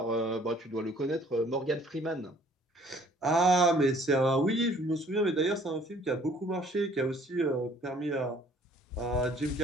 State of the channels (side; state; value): both; normal; correlation 0.57